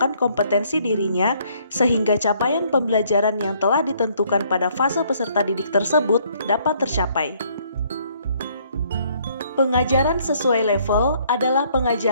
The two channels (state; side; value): inverted; both; correlation -0.65